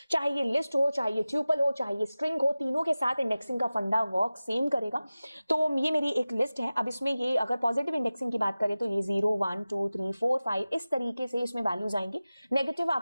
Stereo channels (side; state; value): both; inverted; correlation -0.96